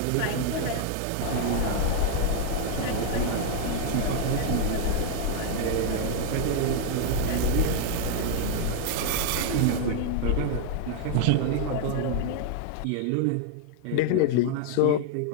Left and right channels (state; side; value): different; both; correlation 0.00